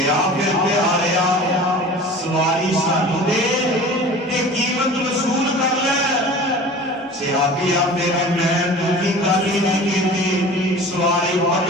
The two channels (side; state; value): both; normal; correlation 0.40